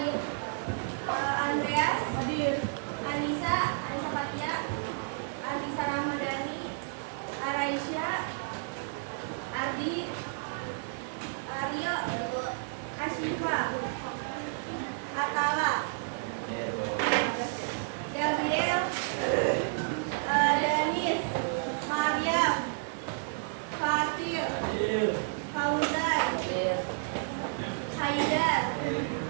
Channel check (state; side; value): silent; left; digital silence